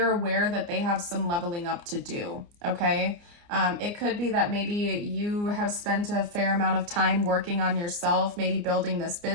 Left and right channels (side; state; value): left; late; 29 ms